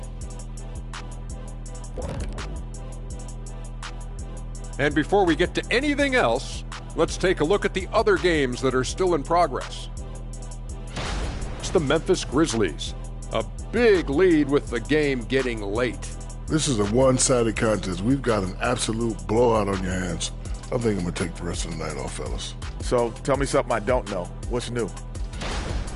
And before we get to anything else, let's take a look at the other games that are still in progress. It's the Memphis Grizzlies. A big lead with the game getting late. This is a one-sided contest. We've got an absolute blowout on your hands. I think I'm going to take the rest of the night off, fellas. So tell me something I don't know. What's new?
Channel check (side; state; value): both; identical; correlation 1.00